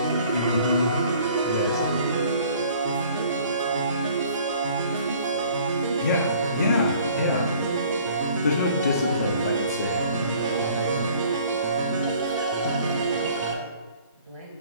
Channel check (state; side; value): inverted; both; correlation -0.54